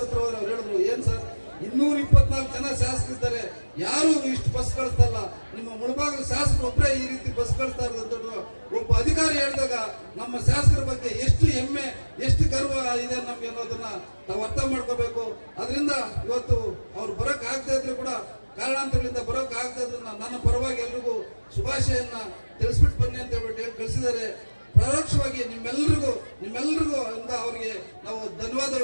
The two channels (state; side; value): inverted; both; correlation -1.00